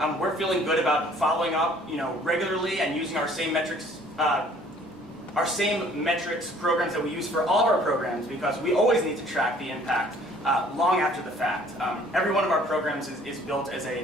we're feeling good about following up, regularly and using our same metrics programs that we use for all of our programs, because we always need to track the impact long after the fact. Every one of our programs is built as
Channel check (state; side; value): normal; both; correlation 0.56